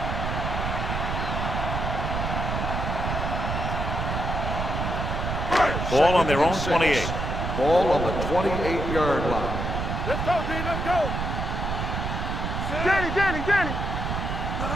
Ball on their own 28. Ball on the 28-yard line. Let's go, D. Let's go. Danny.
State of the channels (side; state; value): right; noise; rumble, 2 dB below the sound